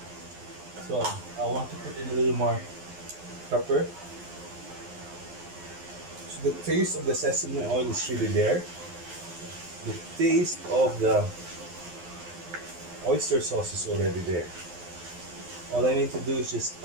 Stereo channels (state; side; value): late; left; 11 ms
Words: So I want to put in a little more pepper. So the taste of the sesame oil is really there. The taste of the oyster sauce is already there. All I need to do is just